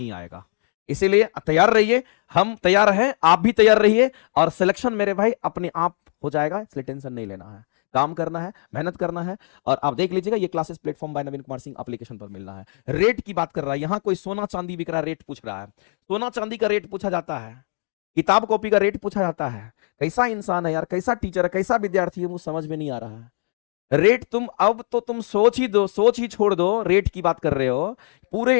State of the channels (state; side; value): silent; right; 58 dB below the other